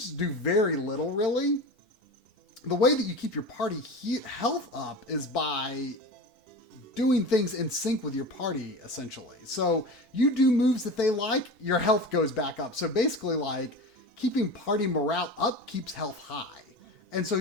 do very little really. The way that you keep your party health up is by doing things in sync with your party, essentially. So you do moves that they like, your health goes back up. So basically like keeping party morale up keeps health high. And so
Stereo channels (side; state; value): both; normal; correlation 0.30